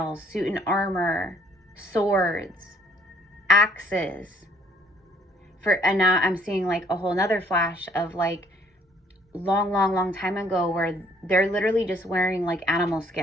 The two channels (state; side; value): normal; both; correlation 0.61